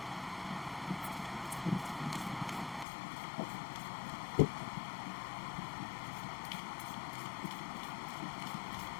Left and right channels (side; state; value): right; drops out; at 2.9 s